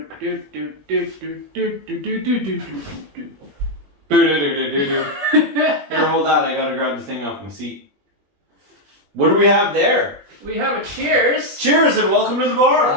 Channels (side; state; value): left; late; 21 ms